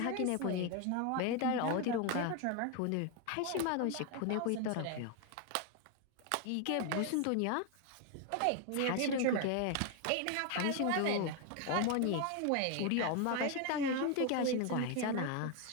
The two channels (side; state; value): both; different; correlation 0.01